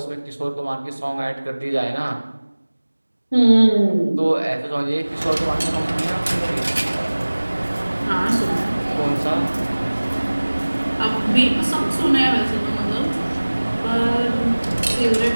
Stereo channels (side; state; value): both; inverted; correlation -1.00